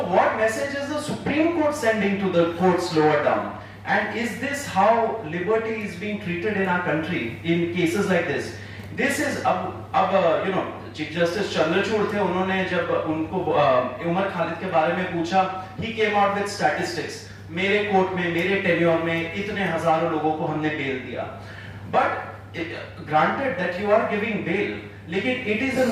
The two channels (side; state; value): both; identical; correlation 1.00